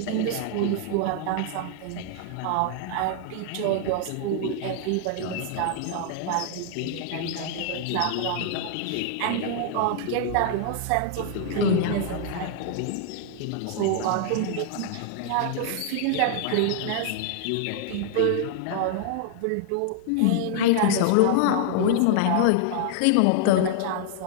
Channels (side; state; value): both; different; correlation -0.01